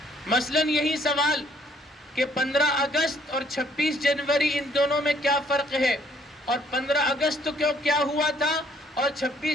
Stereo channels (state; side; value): normal; both; correlation 0.64